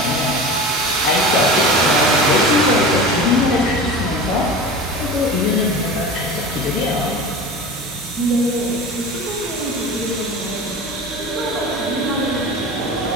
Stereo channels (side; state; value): both; normal; correlation 0.32